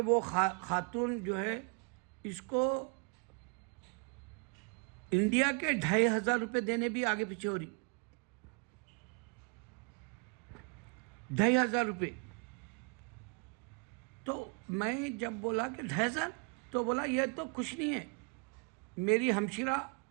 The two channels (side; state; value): left; quieter; 35.3 dB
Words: وہ خاتون جو ہے اس کو انڈیا کے 2500 روپے دینے بھی آگے پیچھے ہو رہی۔ 2500 روپے تو میں جب بولا کہ 2500 تو بولا یہ تو کچھ نہیں ہے، میری ہمشیرہ